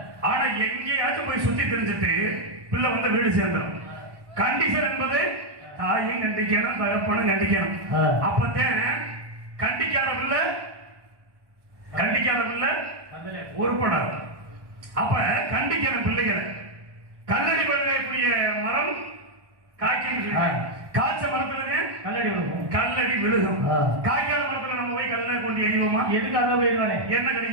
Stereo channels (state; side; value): late; left; 1.1 ms